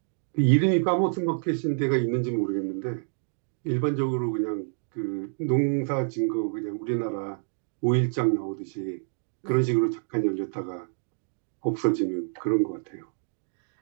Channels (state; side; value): silent; left; digital silence